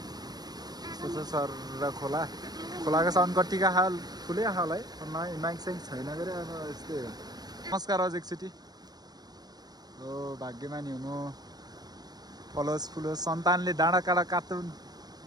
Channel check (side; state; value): left; late; 0.19 ms